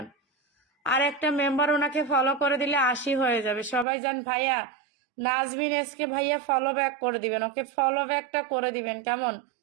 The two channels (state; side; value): drops out; left; at 3.9 s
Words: আর একটা মেম্বার ওনাকে ফলো করে দিলে 80 হয়ে যাবে। সবাই যান। ভাইয়া নাজমিন এসকে ভাইয়া ফলো ব্যাক করে দিবেন। ওকে ফলো ব্যাকটা করে দিবেন, কেমন?